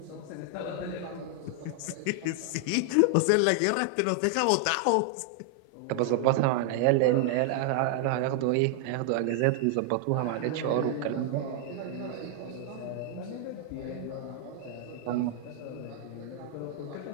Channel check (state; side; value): different; both; correlation 0.00